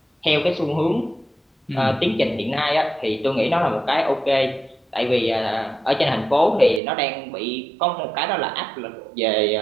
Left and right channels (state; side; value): drops out; left; at 6.8 s